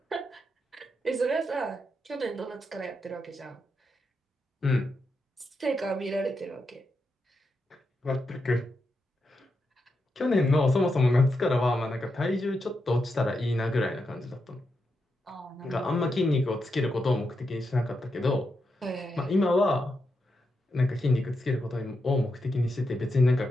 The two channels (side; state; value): both; normal; correlation 0.85